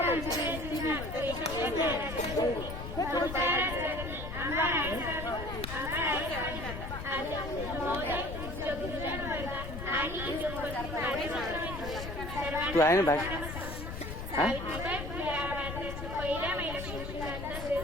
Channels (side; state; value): left; noise; rumble, 7 dB below the sound